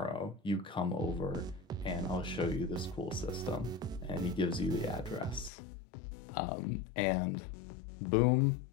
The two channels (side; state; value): right; drops out; at 5.5 s